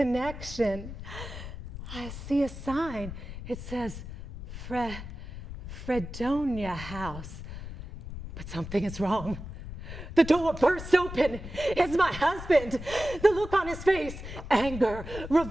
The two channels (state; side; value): noise; left; rumble, 10 dB below the sound